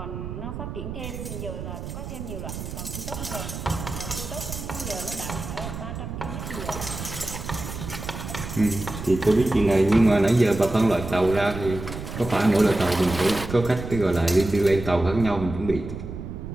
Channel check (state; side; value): noise; right; rumble, 8 dB below the sound